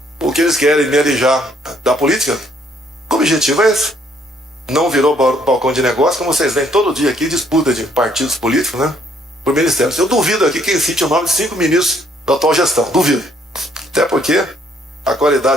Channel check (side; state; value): both; normal; correlation 0.66